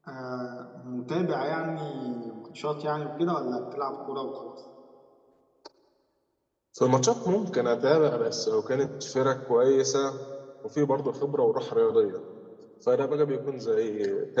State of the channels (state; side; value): identical; both; correlation 1.00